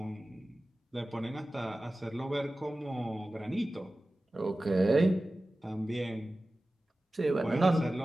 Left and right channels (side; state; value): both; normal; correlation 0.96